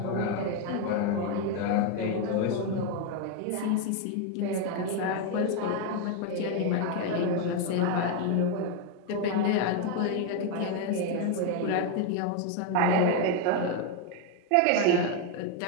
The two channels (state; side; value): different; both; correlation 0.01